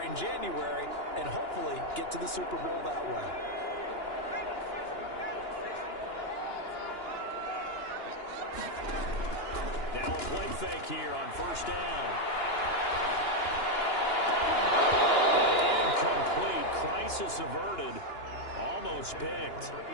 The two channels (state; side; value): late; right; 2.9 ms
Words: in January and hopefully get to the Super Bowl that way. Now a play fake here on first down. Incomplete. Crisis averted. Almost picked.